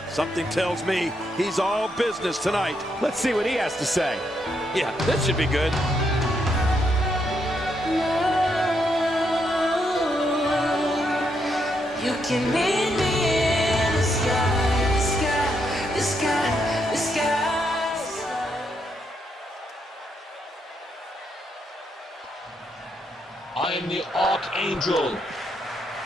Something tells me he's all business tonight. Let's see what he has to say. Yeah, this should be good. You can meet me in the sky, the sky, the sky, the sky. I am the Archangel,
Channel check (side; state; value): both; normal; correlation 0.78